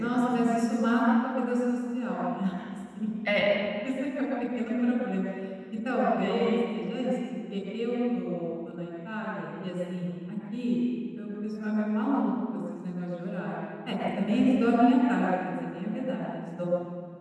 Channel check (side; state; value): both; identical; correlation 1.00